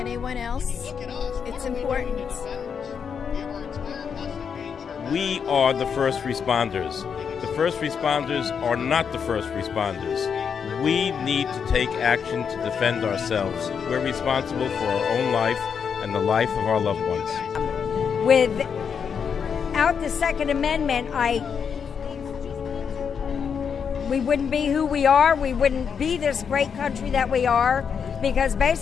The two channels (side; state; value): right; quieter; 6.8 dB